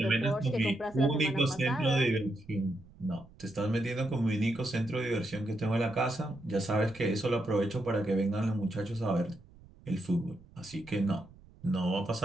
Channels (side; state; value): right; noise; rumble, 23 dB below the sound